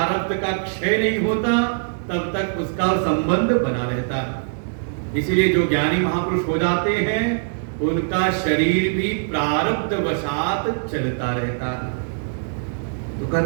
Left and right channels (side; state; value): left; silent; 64 dB below the other